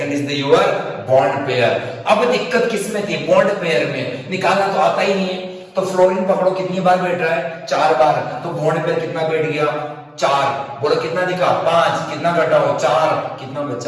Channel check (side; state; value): both; identical; correlation 1.00